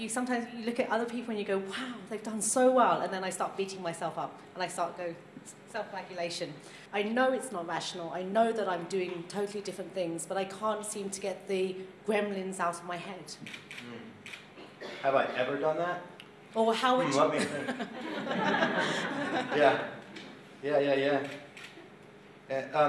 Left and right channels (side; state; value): both; identical; correlation 1.00